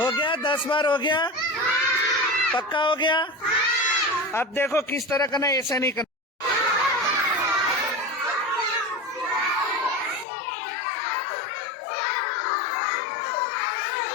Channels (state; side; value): drops out; right; at 10.2 s